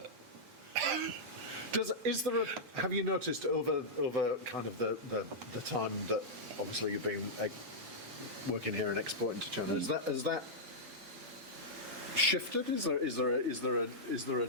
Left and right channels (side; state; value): both; normal; correlation -0.09